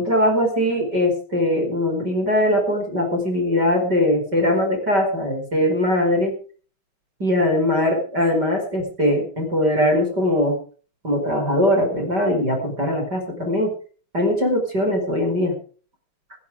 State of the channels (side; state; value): left; late; 5.1 ms